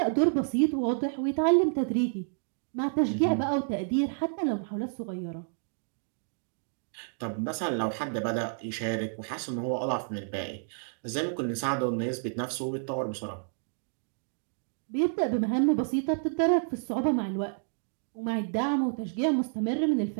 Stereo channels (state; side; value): silent; left; digital silence